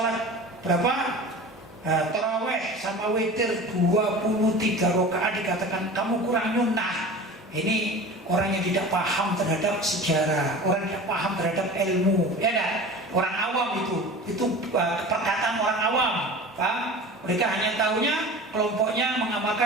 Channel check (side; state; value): both; normal; correlation 0.36